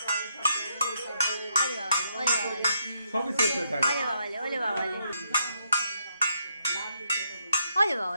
ওলে বাবালে সবই শেষ হয়ে থাকে। ওলে বাবালে ওলে বাবালে ওলে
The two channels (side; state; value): both; inverted; correlation -0.76